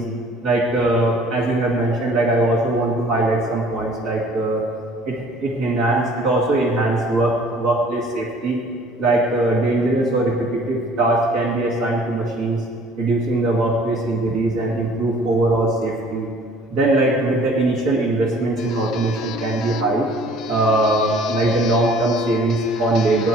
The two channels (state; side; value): normal; both; correlation 0.53